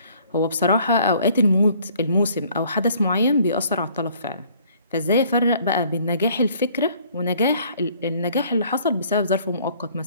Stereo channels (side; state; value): both; inverted; correlation -0.59